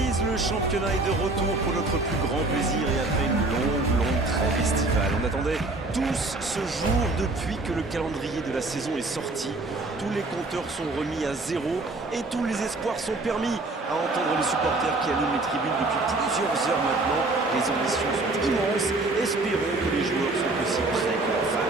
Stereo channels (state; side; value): quieter; left; 3.1 dB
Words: le championnat est de retour pour notre plus grand plaisir et après une longue trêve estivale. On attendait tous ce jour depuis que le calendrier de la saison est sorti. Tous les compteurs sont remis à zéro et tous les espoirs sont permis. À entendre les supporters qui allument les tribunes depuis plusieurs heures maintenant, les ambitions sont immenses. Espérons que les joueurs sont aussi prêts que leurs